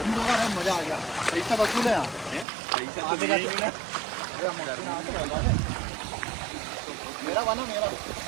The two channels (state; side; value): drops out; left; at 2.5 s